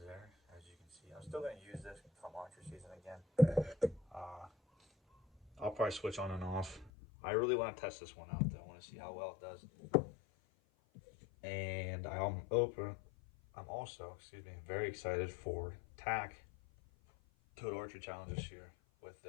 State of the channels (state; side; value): drops out; right; at 6.9 s